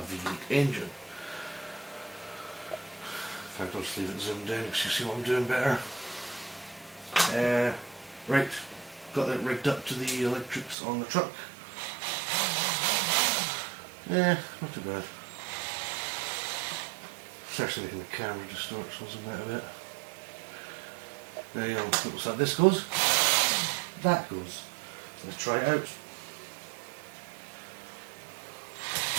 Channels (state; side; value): drops out; left; at 10.8 s